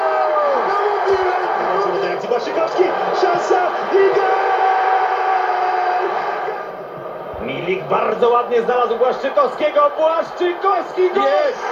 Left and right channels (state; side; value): identical; both; correlation 1.00